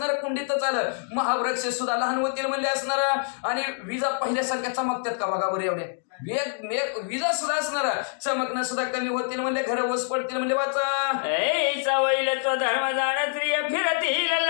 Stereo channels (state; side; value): silent; right; 61 dB below the other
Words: कुंडीतच आलं. महावृक्ष सुद्धा लहान होतील म्हणजे असणार. आणि विजा पहिल्यासारख्या चमकतात का बघा बरं एवढ्या. विजा सुद्धा असणार, चमकणं सुद्धा कमी होतील म्हणजे घर ओस पडतील म्हणजे. वाचा. वैलत्व धर्म जाण स्त्रिय फिरती